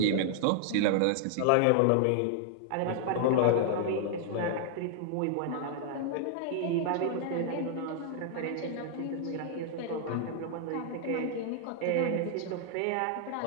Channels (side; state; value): both; different; correlation -0.01